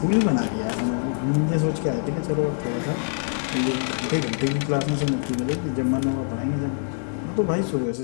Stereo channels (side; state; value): right; silent; digital silence